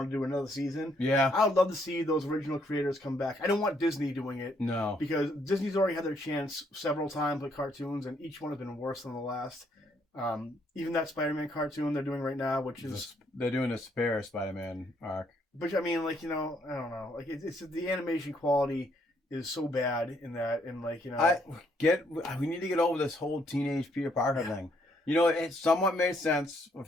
to do another season. Yeah, I would love to see those original creators come back. I don't want Disney doing it. No, because Disney's already had their chance several times with cartoons, and each one has been worse than the last. Even that Spider-Man cartoon they're doing right now, which is they're doing a spare Spider-Man arc. But I mean, I don't know, it's the animation quality is so bad in that, and we need to get over this whole teenage Peter Parker thing. It somewhat made sense with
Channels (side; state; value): both; normal; correlation 0.71